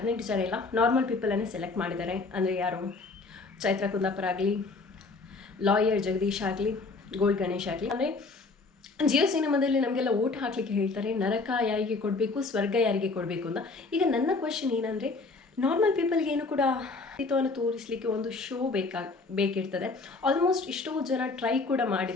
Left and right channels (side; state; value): right; quieter; 3.8 dB